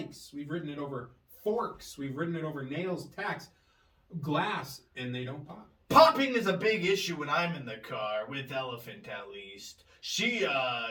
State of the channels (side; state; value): both; identical; correlation 1.00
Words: We've ridden it over forks. We've ridden it over nails, tacks, glass, and they don't pop. Popping is a big issue when I'm in the car, with Elephant at least. She